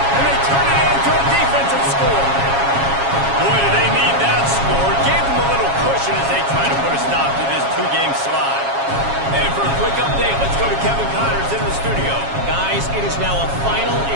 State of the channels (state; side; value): late; left; 7.3 ms